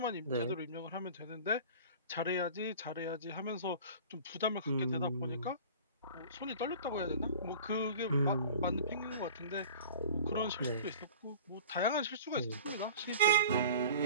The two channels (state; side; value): inverted; both; correlation -0.40